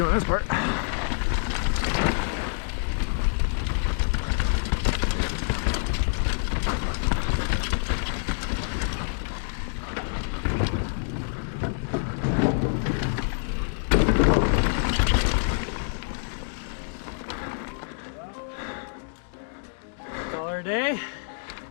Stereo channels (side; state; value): right; silent; digital silence